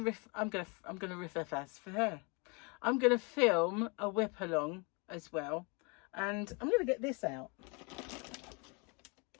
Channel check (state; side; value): quieter; right; 31.6 dB